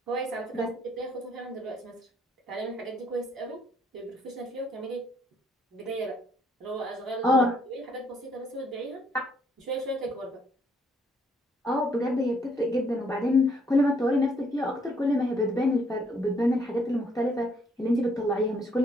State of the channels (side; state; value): both; normal; correlation 0.68